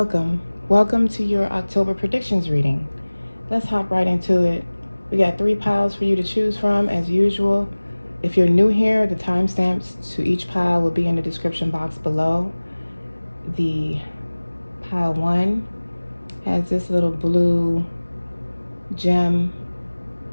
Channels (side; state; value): both; inverted; correlation -1.00